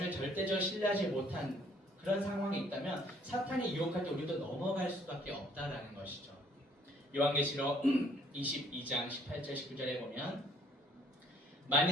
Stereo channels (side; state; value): both; normal; correlation 0.62